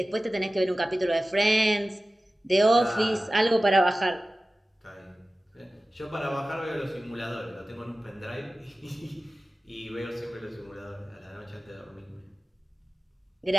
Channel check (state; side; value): normal; both; correlation 0.96